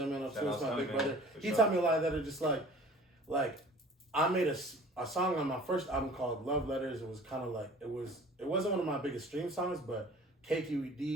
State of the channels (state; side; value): normal; both; correlation 0.47